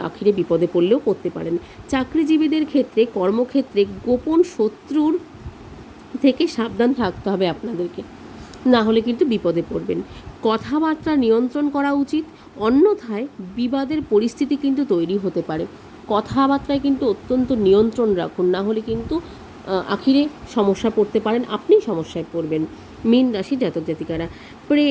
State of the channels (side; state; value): both; identical; correlation 1.00